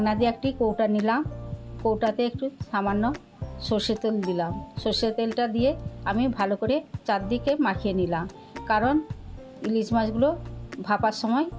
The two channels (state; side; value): identical; both; correlation 1.00